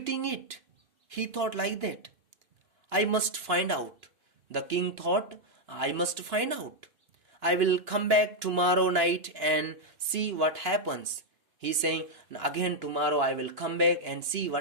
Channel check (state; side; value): late; left; 2.5 ms